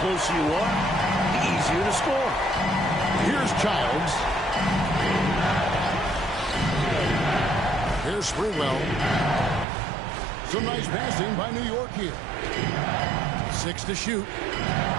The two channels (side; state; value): left; drops out; at 9.7 s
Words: closer you are, the easier to score. Here's Childs. Here's Sprewell. Some nice passing by New York here. 6 to shoot.